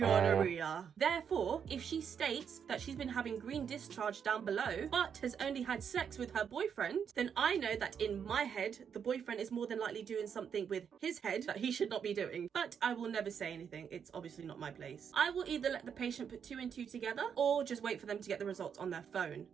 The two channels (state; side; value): quieter; left; 7.4 dB